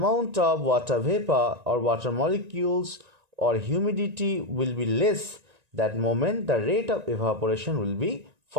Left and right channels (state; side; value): late; left; 1.9 ms